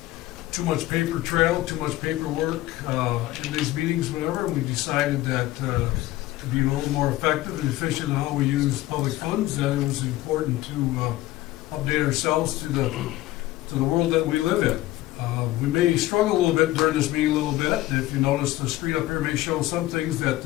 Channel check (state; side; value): quieter; right; 16.3 dB